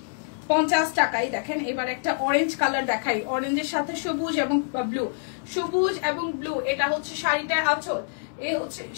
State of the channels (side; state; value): right; silent; digital silence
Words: টাকায়। দেখেন এবার একটা অরেঞ্জ কালার দেখাই, অরেঞ্জের সাথে সবুজ এবং ব্লু, সবুজ এবং ব্লু। এটা হচ্ছে শাড়িটার আঁচল, এই হচ্ছে